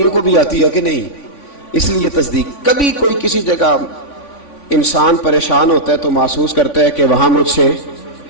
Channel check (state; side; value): late; right; 3.5 ms